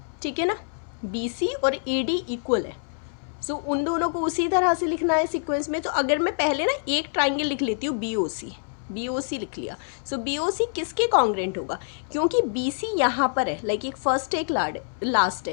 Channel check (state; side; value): silent; right; 61 dB below the other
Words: ठीक है ना, BC और AD इक्वल है। सो उन दोनों को उसी तरह से लिखना है सीक्वेंस में। तो अगर मैं पहले ना एक ट्राइंगल लिख लेती हूँ BOC लिख लिया। सो BOC किसके कॉन्ग्रेंट होगा, क्योंकि BC यहाँ पर है, लाइक एक फर्स्ट एक लास्ट